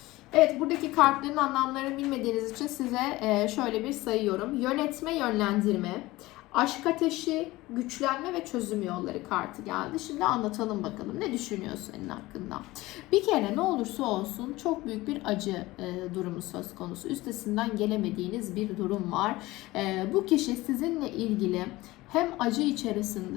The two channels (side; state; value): right; quieter; 19.2 dB